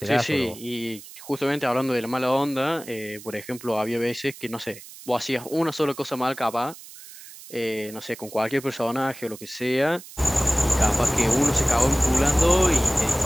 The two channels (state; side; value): noise; right; hiss, 17 dB below the sound